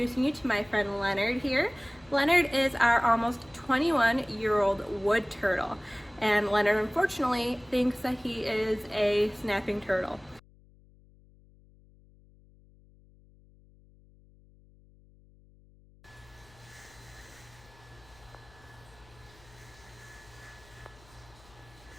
you to my friend Leonard here. Leonard is our almost 21-year-old wood turtle, and Leonard unfortunately thinks that he is a snapping turtle.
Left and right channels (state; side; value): noise; left; hum, 27 dB below the sound